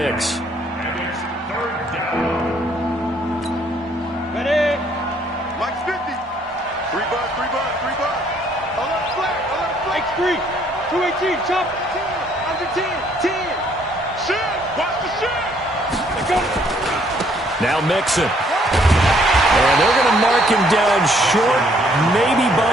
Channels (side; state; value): both; normal; correlation 0.65